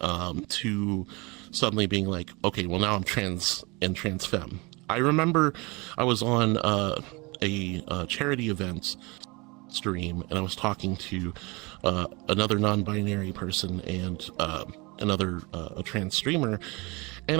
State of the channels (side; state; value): left; quieter; 26.5 dB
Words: to suddenly being like, okay, well now I'm trans and trans femme. I remember I was on a charity event stream and I was talking to another non-binary person and another a trans streamer, and